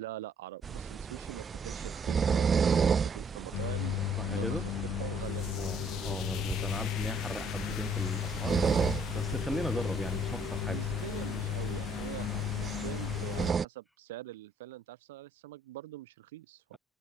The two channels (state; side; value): normal; both; correlation 0.63